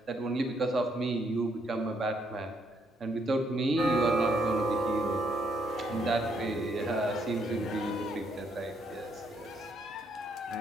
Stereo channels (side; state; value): both; normal; correlation 0.72